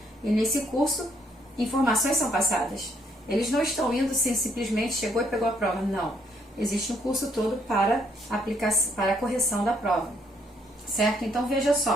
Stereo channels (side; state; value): both; normal; correlation 0.70